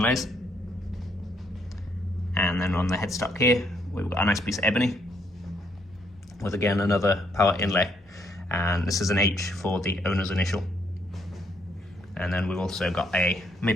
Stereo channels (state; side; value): normal; both; correlation 0.72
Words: And then on the headstock here, we've got a nice piece of ebony with again another power inlay. And this is an H for the owner's initial. And then we've also got a